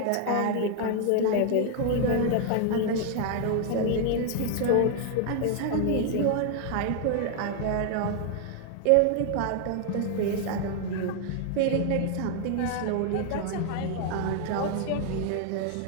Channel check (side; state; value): both; different; correlation 0.00